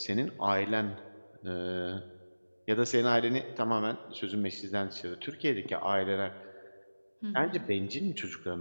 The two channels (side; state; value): both; inverted; correlation -1.00